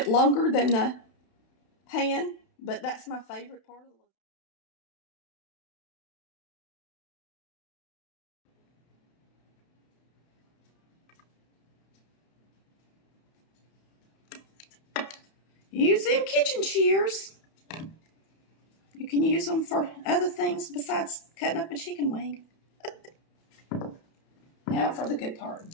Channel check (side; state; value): right; late; 31 ms